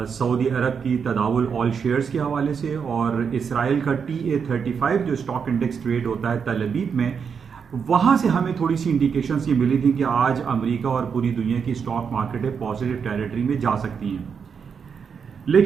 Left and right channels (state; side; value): quieter; left; 6.5 dB